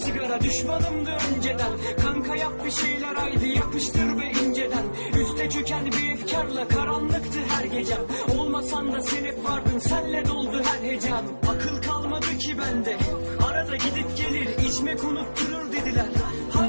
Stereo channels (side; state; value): both; inverted; correlation -1.00